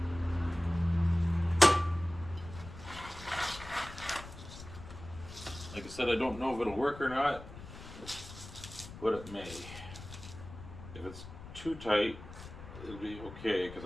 Like I said, I don't know if it'll work or not, but it may. If it's too tight, it'll be okay because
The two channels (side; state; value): left; noise; rumble, 14 dB below the sound